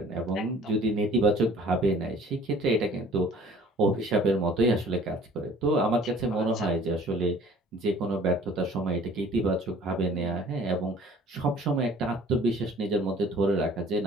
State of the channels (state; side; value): normal; both; correlation 0.51